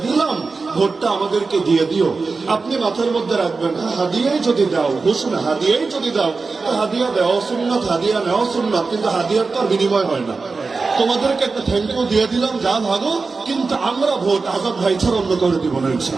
দিলাম, ভোটটা আমাদেরকে দিয়ে দিও, আপনি মাথার মধ্যে রাখবেন, হাদিয়াই যদি দাও, ঘোষণা হাদিয়াই যদি দাও, তো হাদিয়া দেওয়া সুন্নাত, হাদিয়া নেওয়া সুন্নাত, কিন্তু হাদিয়ার তো আর বিনিময় হয় না। তোমাদেরকে একটা থ্যাংক ইউ দিয়ে দিলাম, যা ভাগো, কিন্তু আমরা ভোট আজাদ ভাই ছাড়া অন্য করে দিব না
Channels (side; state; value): left; quieter; 4.2 dB